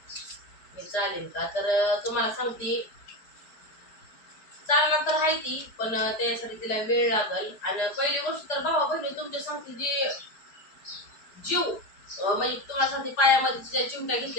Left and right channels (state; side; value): late; right; 4.9 ms